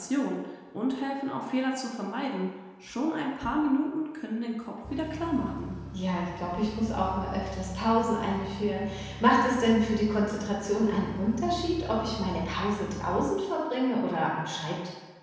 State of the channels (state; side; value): identical; both; correlation 1.00